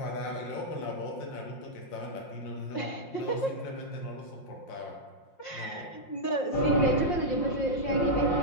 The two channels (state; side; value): late; right; 5.6 ms